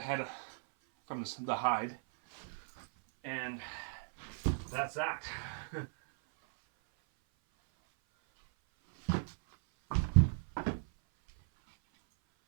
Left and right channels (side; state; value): left; silent; 54 dB below the other